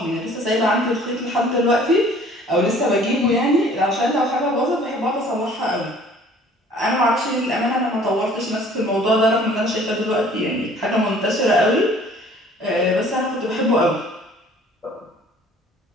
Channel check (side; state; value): both; normal; correlation 0.53